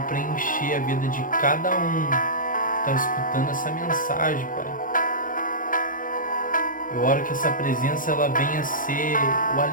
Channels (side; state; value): right; late; 0.39 ms